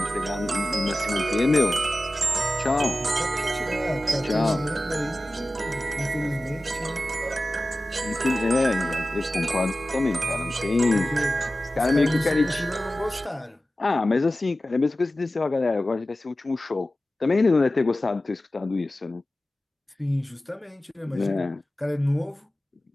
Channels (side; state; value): both; normal; correlation 0.95